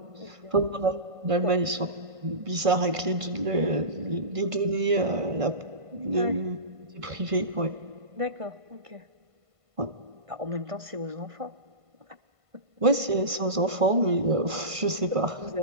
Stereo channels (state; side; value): late; left; 1.5 ms